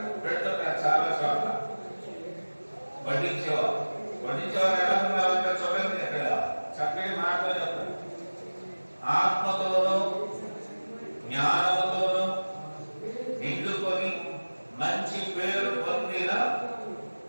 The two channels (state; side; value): inverted; both; correlation -1.00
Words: పెడుతుంటారు. చాలా చోట్ల వడ్డించేవారు ఎలా ఉన్నారంటే చూడండి, అక్కడ చక్కటి మాటలు చెప్తారు. ఆత్మతోనూ జ్ఞానముతోనూ నిండుకొని మంచి పేరు పొందిన